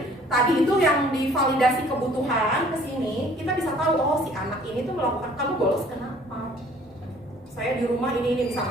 tadi itu yang divalidasi kebutuhan ke sini, kita bisa tahu oh si anak ini tuh melakukan, kamu bolos kenapa? Saya di rumah ini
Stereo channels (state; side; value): normal; both; correlation 0.55